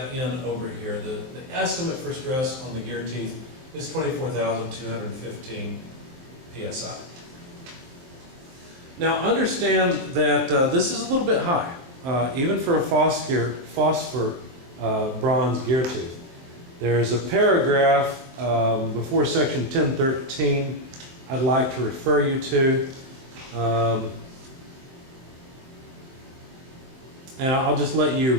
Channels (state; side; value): late; left; 23 ms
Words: in over here. The estimate for stress on the gear teeth is 24,215 psi. Now understand that this is a little bit high, even for a phosphor bronze gear tooth. There's a paragraph before section 1013 I'd like to refer you to. And I'll just let you